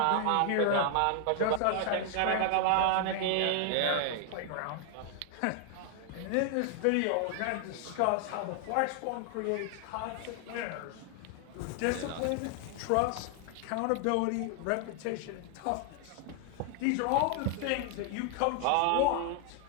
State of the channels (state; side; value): different; both; correlation 0.00